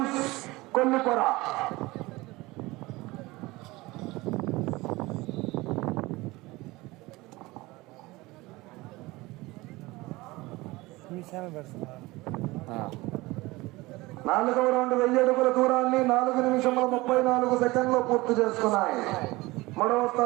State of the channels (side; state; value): left; quieter; 21.1 dB